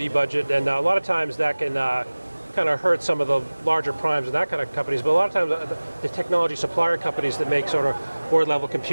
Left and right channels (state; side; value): inverted; both; correlation -1.00